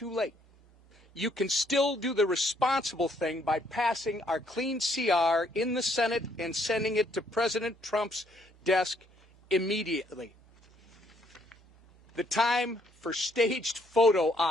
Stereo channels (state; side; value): normal; both; correlation 0.68